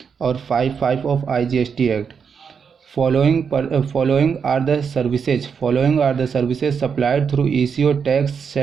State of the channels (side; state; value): left; quieter; 6.5 dB